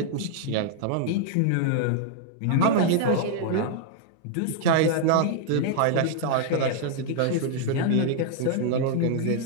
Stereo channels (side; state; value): both; different; correlation 0.00